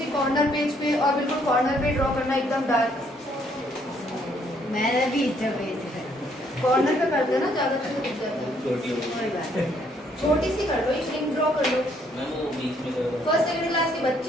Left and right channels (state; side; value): normal; both; correlation 0.68